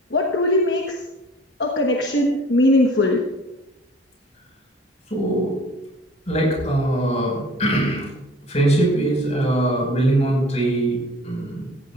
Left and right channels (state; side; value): normal; both; correlation 0.48